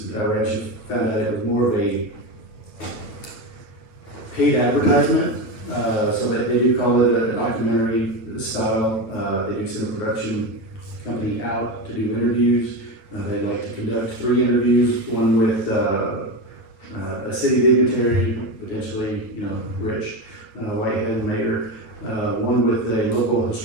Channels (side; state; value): right; late; 9.0 ms